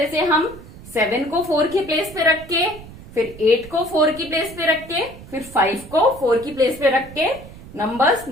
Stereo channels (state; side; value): noise; right; rumble, 17 dB below the sound